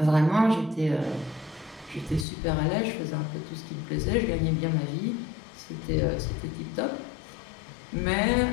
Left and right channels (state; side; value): drops out; right; at 2.2 s